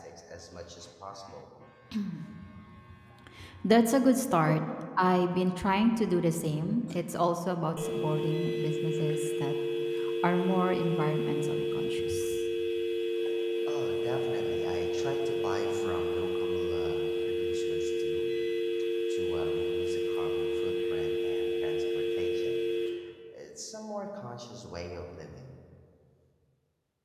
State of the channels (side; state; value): both; identical; correlation 1.00